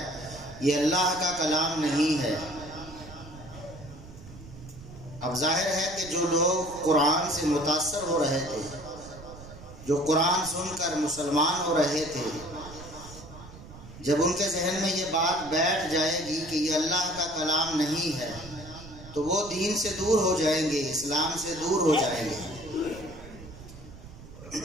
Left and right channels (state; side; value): noise; right; rumble, 16 dB below the sound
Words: یہ اللہ کا کلام نہیں ہے۔ اب ظاہر ہے کہ جو لوگ قرآن سے متاثر ہو رہے تھے، جو قرآن سن کر مسلمان ہو رہے تھے، جب ان کے ذہن میں یہ بات بیٹھ جائے گی کہ یہ اللہ کا کلام نہیں ہے تو وہ دین سے دور ہو جائیں گے، اسلام سے دور ہو جائیں گے۔